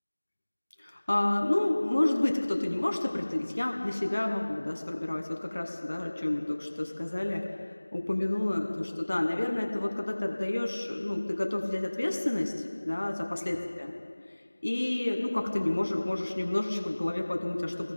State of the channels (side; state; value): both; inverted; correlation -1.00